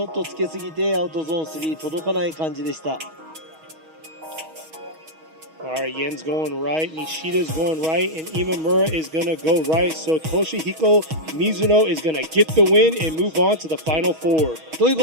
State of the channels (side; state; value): left; late; 6.3 ms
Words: ょっとつけすぎてアウトゾーン3届かない感じでした。All right, Yen's going right, Nishida's going right, and Imamura is going to go right. So Toshihiko Mizuno is going to get the win and move on to the final 4. という